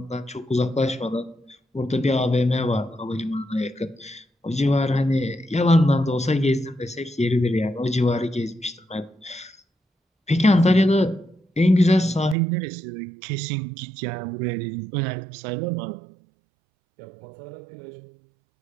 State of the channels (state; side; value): drops out; left; at 12.4 s